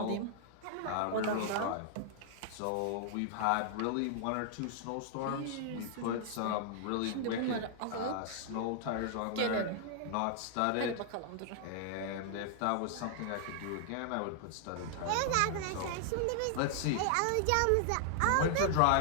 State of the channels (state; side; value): different; both; correlation 0.00